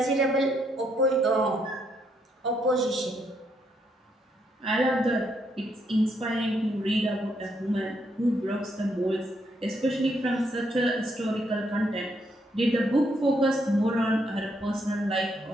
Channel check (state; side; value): normal; both; correlation 0.75